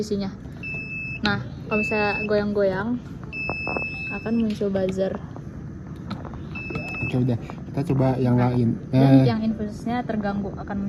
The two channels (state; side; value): identical; both; correlation 1.00